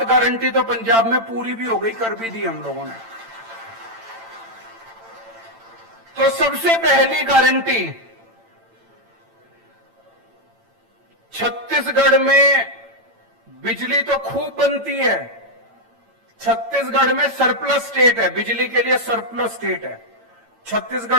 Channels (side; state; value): left; late; 8.9 ms